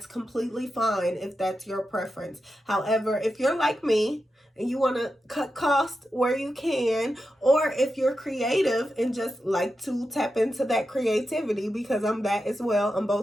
completely fine if that's your preference. However, if you're like me and you want to cut costs where you can, or if you're creative and just like to tap into that creativity, because I'm that as well. I'm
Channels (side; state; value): both; normal; correlation 0.89